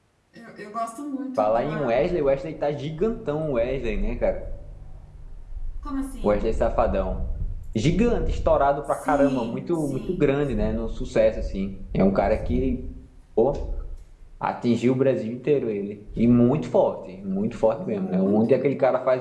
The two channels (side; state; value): both; identical; correlation 1.00